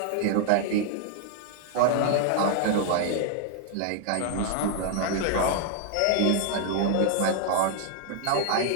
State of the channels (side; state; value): both; different; correlation 0.00